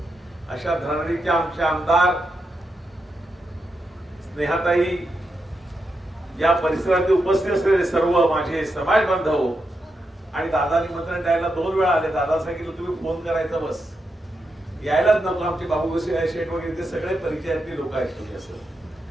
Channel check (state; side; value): normal; both; correlation 0.85